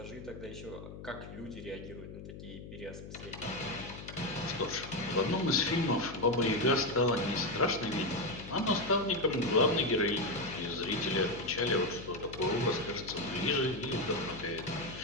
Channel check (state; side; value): noise; left; hum, 12 dB below the sound